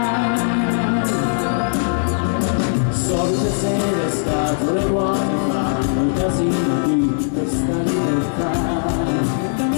Solite sere scatole vuote fanno il casino di questa libertà.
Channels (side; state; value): right; silent; digital silence